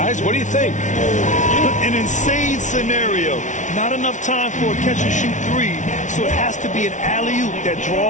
what do you think? An insane scenario. Not enough time for a catch-and-shoot 3, so it has to be an alley-oop that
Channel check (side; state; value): right; late; 0.36 ms